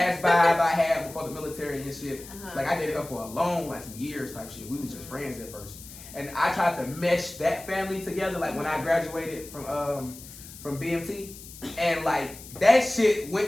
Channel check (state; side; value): noise; left; hiss, 16 dB below the sound